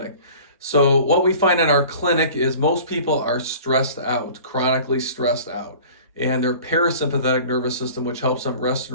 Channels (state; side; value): inverted; both; correlation -0.44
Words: So what we find in our clinic is most people are stressed out, chronically stressed out, and their parasympathetic nervous system, which helps them rest